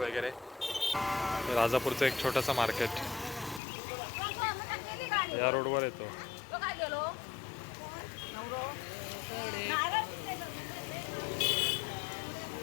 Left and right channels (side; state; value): right; drops out; at 3.6 s